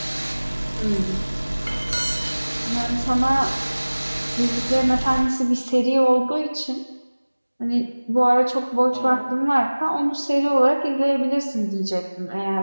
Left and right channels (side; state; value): both; inverted; correlation -1.00